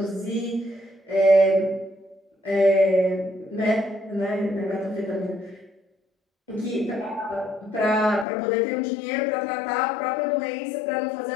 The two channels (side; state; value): right; drops out; at 8.2 s